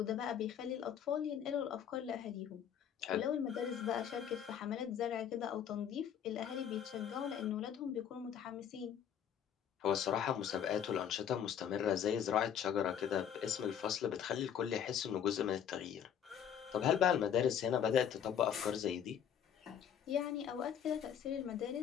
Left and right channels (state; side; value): quieter; right; 8.9 dB